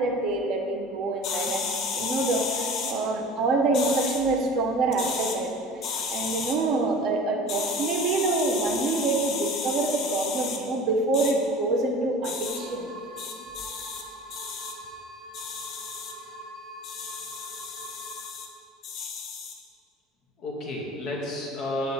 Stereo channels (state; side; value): normal; both; correlation 0.40